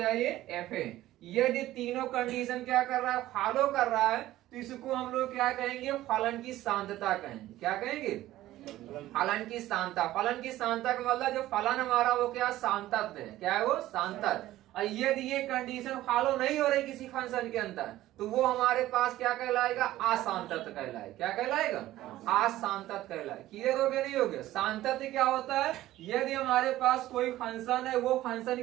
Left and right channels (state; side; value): quieter; left; 15.1 dB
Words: ये एफ ए। यदि तीनों कंडीशन क्या कर रहा है? फॉलो कर रहा है तो इसको हम लोग क्या कहेंगे? फलन की सांतता कहेंगे। क्या कहेंगे? फलन की सांतता। फलन की सांतता का मतलब जो फलन हमारा वो क्या? सांतत है। क्या है वो? सांतत। और यदि ये कंडीशन फॉलो नहीं हो रही किसी फंक्शन के अंदर तो वो हमारे पास क्या कहलाएगा? असांतत कहलाएगा। क्या कहलाएगा? असांतत कहलाएगा। क्लियर हो गया? नहीं हो गया? सांतत क्या होता है? यदि हमारे पास कोई फंक्शन है, वो फंक्शन